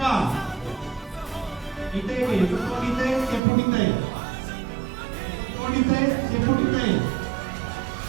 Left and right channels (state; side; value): drops out; left; at 3.4 s